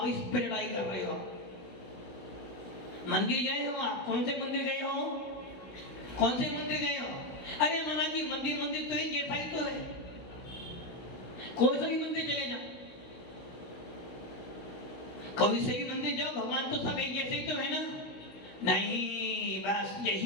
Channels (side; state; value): right; late; 16 ms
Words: इस पर लड़ाई कर रहे हो। मंदिर गए हो आप? कौन से मंदिर गए हो? कौन से मंदिर गए हो? अरे माना कि मंदिर मंदिर तो एक जैसा ही तो है, कोई सा भी मंदिर चले जाओ, कोई से भी मंदिर जाओ, भगवान तो सब एक जैसे ही तो है ना। नहीं, बस